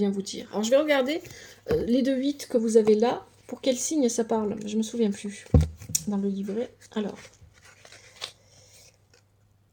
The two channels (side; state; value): both; identical; correlation 1.00